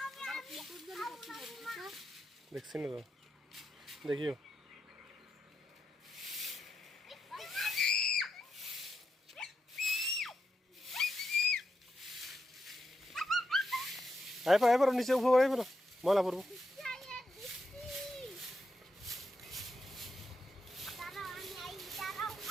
দেখছি না তো, দেখিও। আয় পারো নিচে, উপর আয় পারো, ময়লা পড়বো।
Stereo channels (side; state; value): both; normal; correlation 0.85